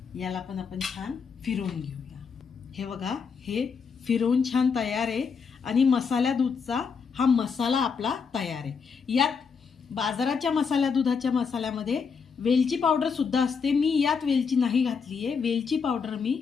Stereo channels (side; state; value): right; quieter; 5.8 dB